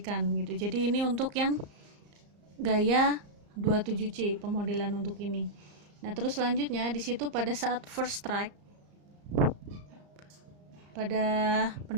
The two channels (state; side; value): late; left; 34 ms